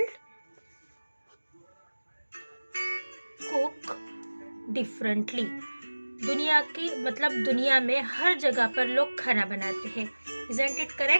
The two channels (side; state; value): both; inverted; correlation -1.00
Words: cook differently. दुनिया में हर जगह पर लोग खाना बनाते हैं. Isn't it